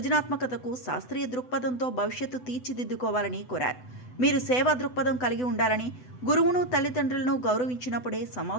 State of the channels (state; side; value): late; right; 8.0 ms